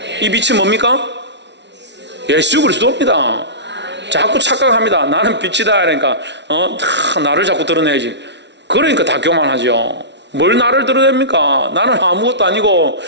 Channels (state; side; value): late; left; 0.51 ms